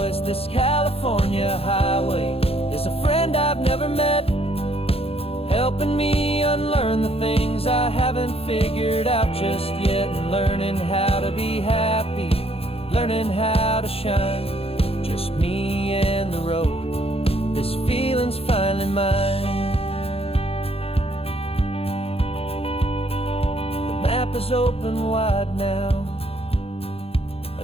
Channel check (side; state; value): right; late; 0.28 ms